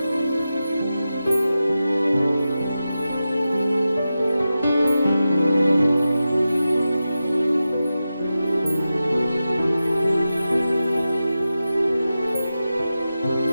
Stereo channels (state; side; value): inverted; both; correlation -0.92